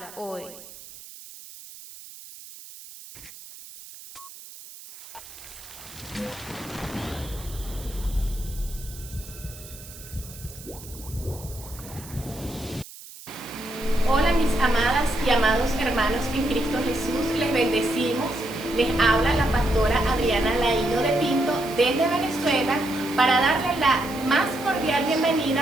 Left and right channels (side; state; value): right; noise; hiss, 17 dB below the sound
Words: hoy. Hola mis amadas y amados hermanos en Cristo Jesús, les bendecimos. Les habla la pastora Adriana Laíno de Pinto desde Venezuela para darle la más cordial bienvenida